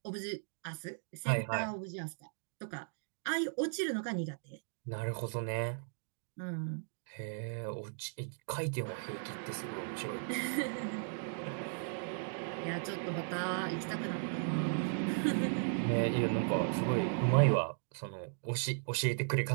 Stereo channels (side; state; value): left; silent; digital silence